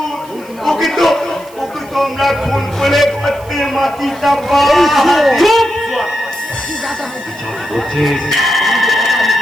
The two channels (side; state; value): right; noise; hiss, 24 dB below the sound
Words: ওকে তো আমরা খুন করে করতে মাটি চাপা।